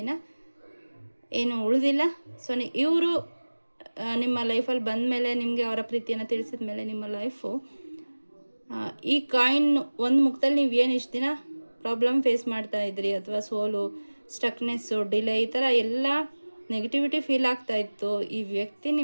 ಏನು ಉಳಿದಿಲ್ಲ. ಸೊ ಇವರು ನಿಮ್ಮ ಲೈಫಲ್ಲಿ ಬಂದ ಮೇಲೆ, ನಿಮಗೆ ಅವರ ಪ್ರೀತಿಯನ್ನು ತಿಳಿಸಿದ ಮೇಲೆ ನಿಮ್ಮ ಲೈಫು ಈ ಕಾಯಿನ್ ಒಂದು ಮುಖದಲ್ಲಿ ನೀವು ಏನು ಇಷ್ಟು ದಿನ ಪ್ರಾಬ್ಲಮ್ ಫೇಸ್ ಮಾಡ್ತಾ ಇದ್ರಿ, ಅಥವಾ ಸೋಲು, ಸ್ಟಕ್ನೆಸ್ಸು, ಡಿಲೇ, ಈ ಥರ ಎಲ್ಲ ನೆಗೆಟಿವಿಟಿ ಫೀಲ್ ಆಗ್ತಾ ಇತ್ತು, ಈ ವ್ಯಕ್ತಿ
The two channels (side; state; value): both; inverted; correlation -1.00